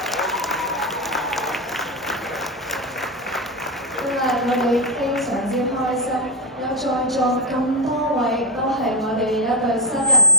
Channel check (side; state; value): both; normal; correlation 0.07